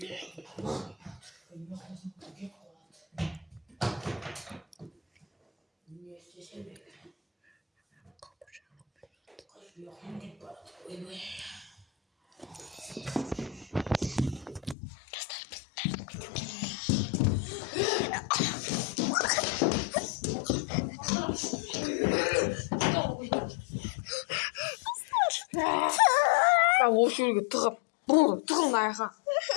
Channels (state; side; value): drops out; right; at 14.8 s